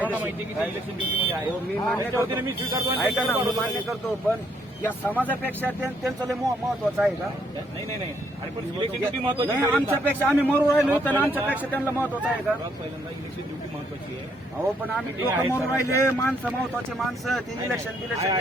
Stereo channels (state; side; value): normal; both; correlation 0.71